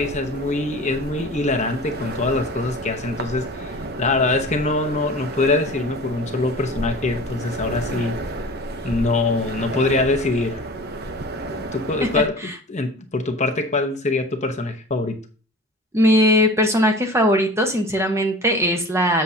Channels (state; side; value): normal; both; correlation 0.39